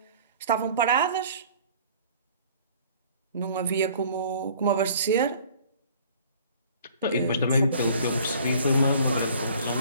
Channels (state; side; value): inverted; both; correlation -0.52